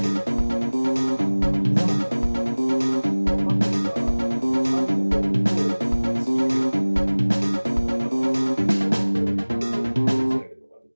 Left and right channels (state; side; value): inverted; both; correlation -1.00